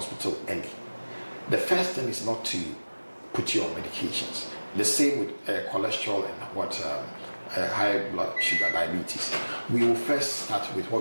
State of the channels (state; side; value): inverted; both; correlation -1.00